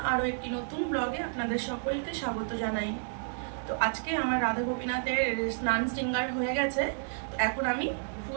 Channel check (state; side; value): silent; left; 57 dB below the other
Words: আরও একটি নতুন ব্লগে আপনাদের সকলকে স্বাগত জানাই। তো আজকে আমার রাধা গোপীনাথের স্নান শৃঙ্গার হয়ে গেছে। তো এখন আমি